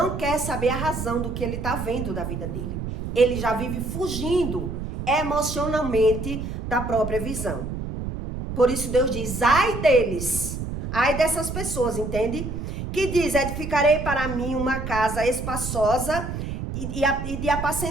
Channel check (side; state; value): right; noise; rumble, 5 dB below the sound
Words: quer saber a razão do que ele está vendo da vida dele. Ele já vive fugindo emocionalmente da própria visão. Por isso Deus diz, ai deles, ai dessas pessoas, entende? Que diz, edificarei para mim uma casa espaçosa e de